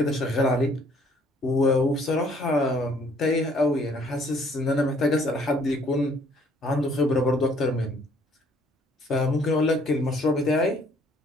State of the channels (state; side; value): normal; both; correlation 0.62